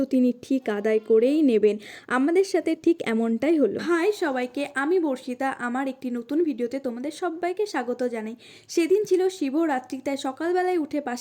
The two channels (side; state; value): both; identical; correlation 1.00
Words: তিনি ঠিক আদায় করেই নেবেন। আমাদের সাথে ঠিক এমনটাই হলো। হাই সবাইকে, আমি বর্ষিতা। আমার একটি নতুন ভিডিওতে তোমাদের সবাইকে স্বাগত জানাই। সেদিন ছিল শিবরাত্রি, তাই সকালবেলায় উঠে